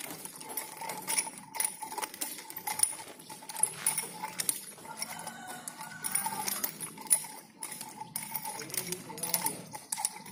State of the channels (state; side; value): identical; both; correlation 1.00